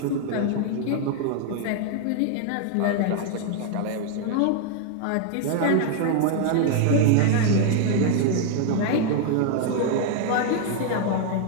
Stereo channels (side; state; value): both; different; correlation 0.00